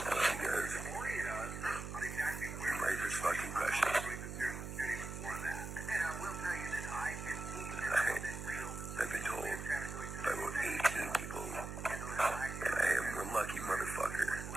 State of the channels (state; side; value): noise; right; hum, 7 dB below the sound